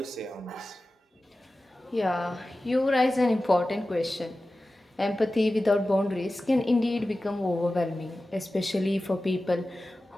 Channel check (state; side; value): normal; both; correlation 0.95